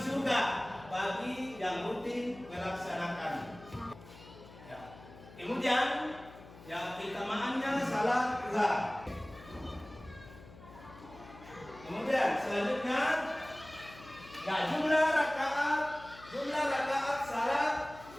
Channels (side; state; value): left; noise; hum, 19 dB below the sound